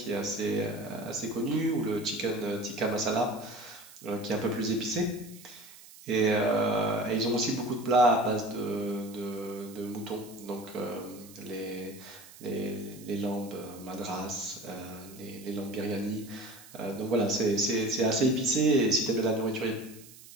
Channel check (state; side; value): noise; right; hiss, 20 dB below the sound